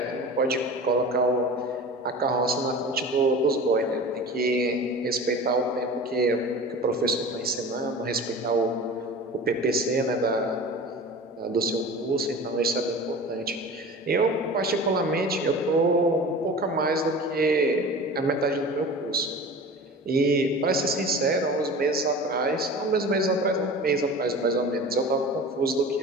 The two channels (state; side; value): normal; both; correlation 0.36